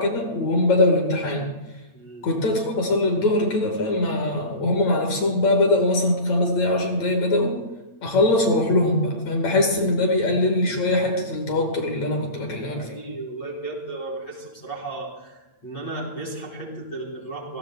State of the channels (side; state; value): right; late; 8.7 ms